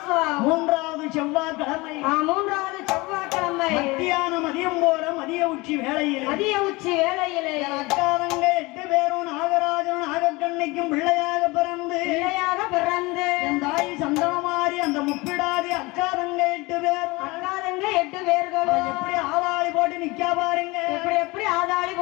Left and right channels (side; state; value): right; quieter; 23.3 dB